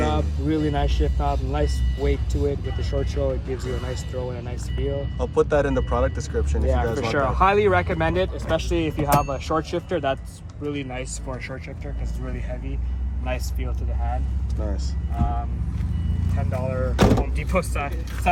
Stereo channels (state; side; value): identical; both; correlation 1.00